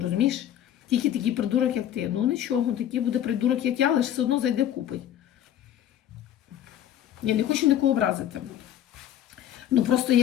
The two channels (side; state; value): right; quieter; 10.9 dB